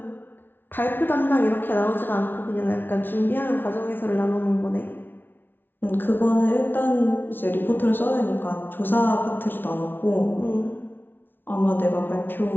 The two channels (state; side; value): late; right; 0.099 ms